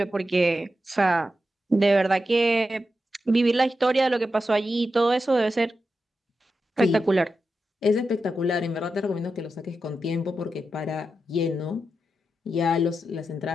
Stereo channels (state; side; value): normal; both; correlation 0.89